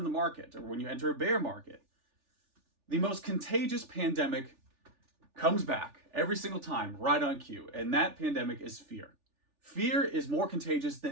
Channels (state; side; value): late; left; 3.4 ms